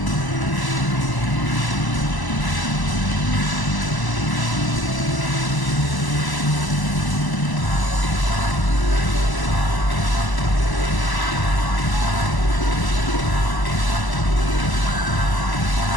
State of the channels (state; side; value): late; right; 1.0 ms